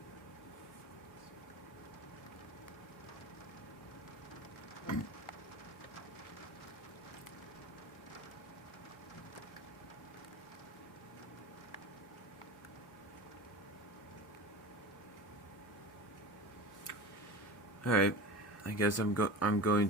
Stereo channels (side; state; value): both; normal; correlation 0.31